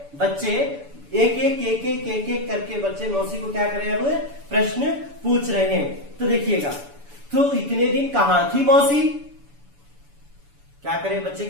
बच्चे एक करके बच्चे मौसी को क्या करें, अब प्रश्न पूछ रहे हैं। तो देखिएगा, तो इतने दिन कहां थी मौसी, क्या करें बच्चे,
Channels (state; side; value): late; left; 7.0 ms